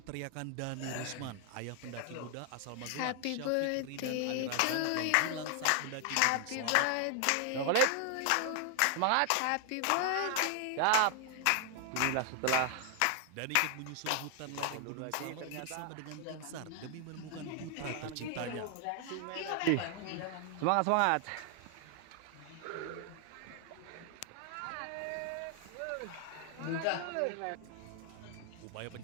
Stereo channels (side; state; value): both; different; correlation 0.00